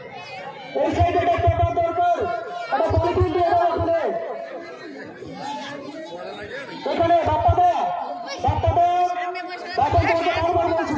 এই সাইডে পেপার দরকার, একটা পলিথিন দিয়ে দাও এখানে, এখানে বাপ্পাদা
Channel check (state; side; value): identical; both; correlation 1.00